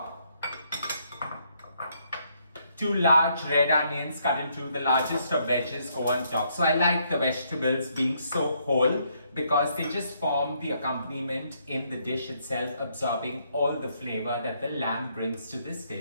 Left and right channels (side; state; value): both; inverted; correlation -0.72